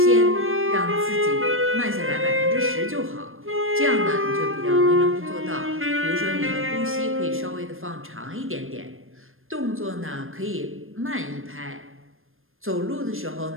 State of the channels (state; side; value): late; left; 0.60 ms